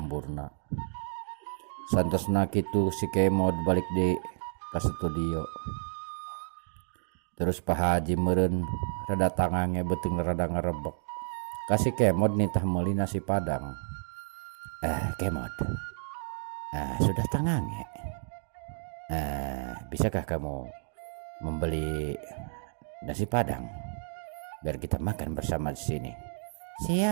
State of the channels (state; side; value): silent; left; digital silence